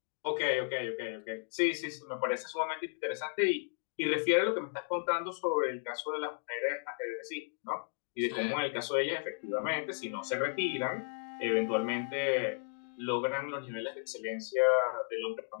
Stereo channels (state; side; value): silent; right; digital silence